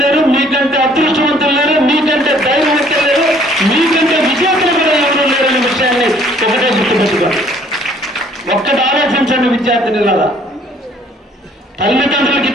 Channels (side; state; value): both; normal; correlation 0.59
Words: లేరు, మీకంటే అదృష్టవంతులు లేరు, మీకంటే ధైర్యవంతులు లేరు, మీకంటే విజేతలు కూడా ఎవరు లేరు అనే విషయాన్ని ఒకటే గుర్తుపెట్టుకోండి. ఒక్కటి ఆలోచించండి విద్యార్థినిలాగా. తల్లిదండ్రులకు